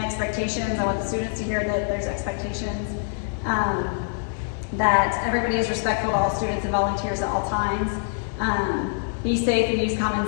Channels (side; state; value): right; silent; digital silence